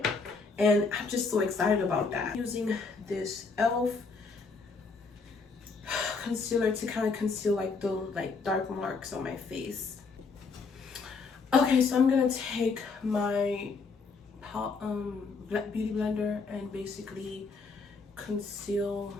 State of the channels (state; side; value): quieter; right; 4.5 dB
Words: and I'm just so excited about that. Using this e.l.f. concealer to kind of conceal like the dark marks on my face. Okay, so I'm gonna take my beauty blender and basically conceal